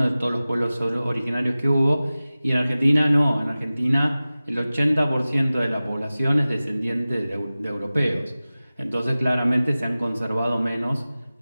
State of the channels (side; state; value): both; inverted; correlation -0.97